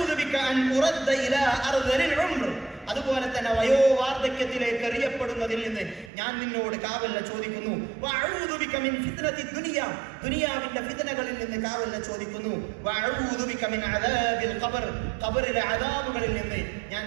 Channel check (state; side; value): drops out; left; at 6.1 s